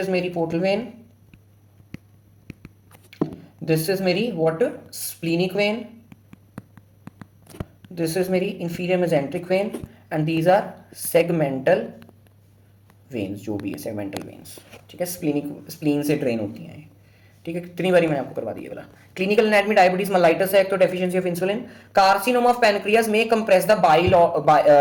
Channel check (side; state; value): both; identical; correlation 1.00